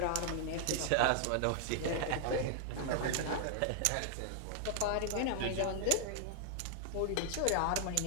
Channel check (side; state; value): both; different; correlation -0.01